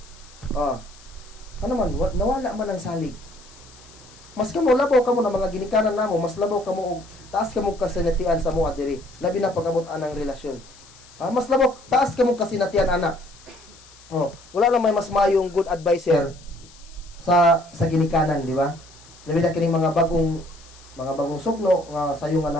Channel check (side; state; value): left; noise; hiss, 23 dB below the sound